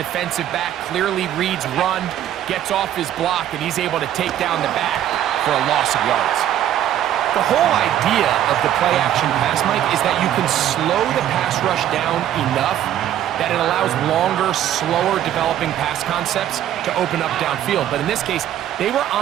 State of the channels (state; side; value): quieter; left; 11.5 dB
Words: back clearly reads run, gets off his block, and he's able to take down the back for a loss of yards. The whole idea of the play-action pass, Mike, is that you can slow the pass rush down enough that it allows longer, slower developing pass concepts to open up downfield. But in this case, they were